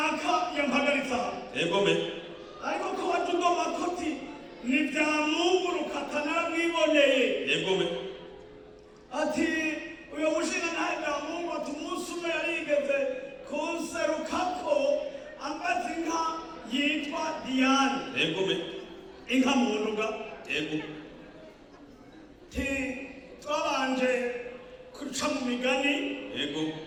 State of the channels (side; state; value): both; identical; correlation 1.00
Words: yampagaritse aha, yego me ariko ko watugoma koti ni Byamunguruka naramwiboneye, yego me ati uyo mushinga ntahe Byamungu ati umunsi umwe yarigeze kunserukako ambaza inka yitwa Diane, yego me inka munduga, yego twabanje kuca mu migani, yego